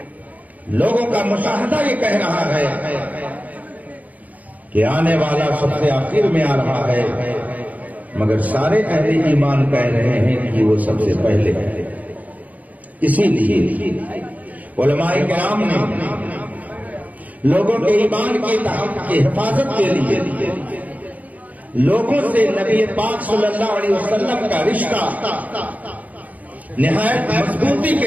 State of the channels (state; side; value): late; left; 0.076 ms